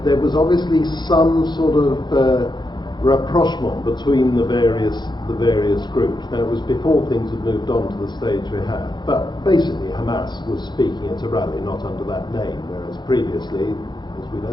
was obviously some sort of rapprochement between the various groups. Now, it was before things had moved on to the stage we have, but basically Hamas was speaking at a rally, not under that name, whereas previously, as we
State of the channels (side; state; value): right; late; 0.21 ms